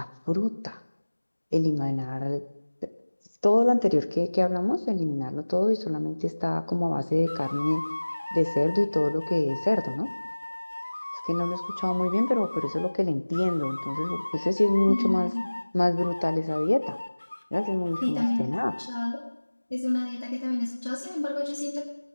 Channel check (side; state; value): both; inverted; correlation -1.00